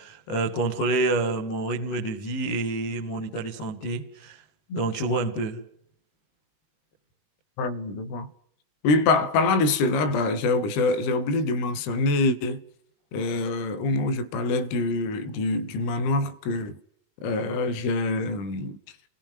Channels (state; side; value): late; right; 20 ms